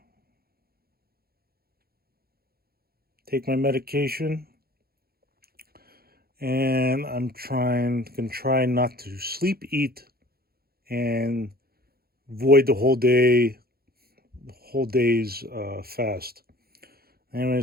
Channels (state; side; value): late; left; 0.44 ms